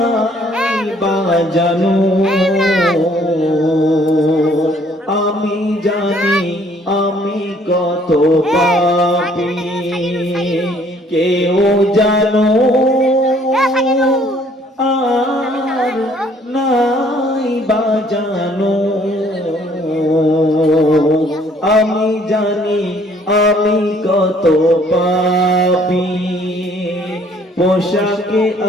বাজানো, আমি জানি আমি কত পাপী, কেউ জানো আর নাই বাজানো, আমি জানি আমি কত পাপী। পোশাকে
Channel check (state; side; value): normal; both; correlation 0.61